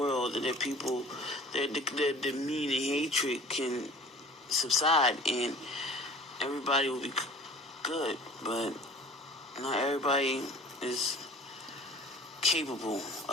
that people, the mean and hatred can subside and everybody will be good. But not everybody is capable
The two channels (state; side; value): normal; both; correlation 0.45